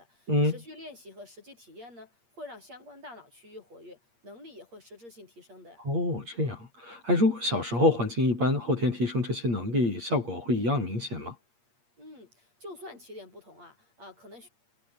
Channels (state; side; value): late; left; 8.5 ms